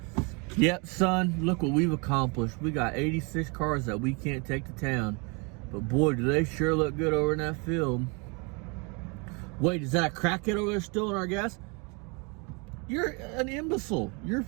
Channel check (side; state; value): left; quieter; 31.7 dB